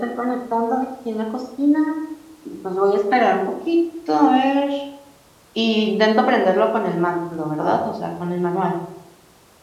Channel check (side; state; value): both; identical; correlation 1.00